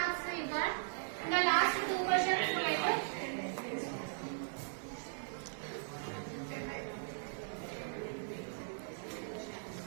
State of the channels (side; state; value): left; silent; digital silence